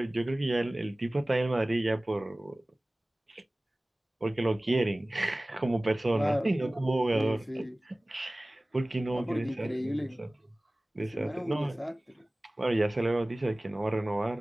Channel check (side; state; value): both; normal; correlation 0.98